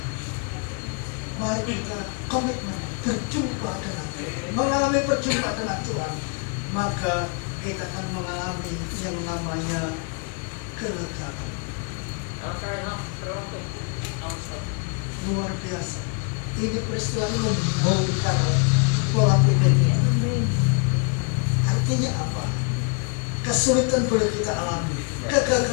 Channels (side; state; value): right; quieter; 36.3 dB